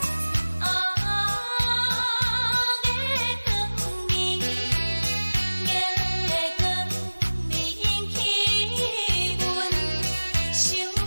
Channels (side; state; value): both; inverted; correlation -1.00